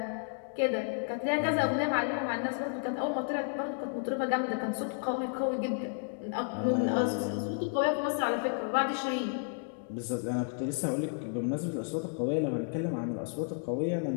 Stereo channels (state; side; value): silent; right; digital silence